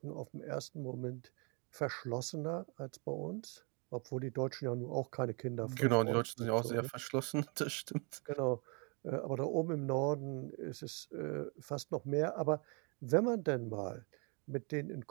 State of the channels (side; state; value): left; quieter; 33.7 dB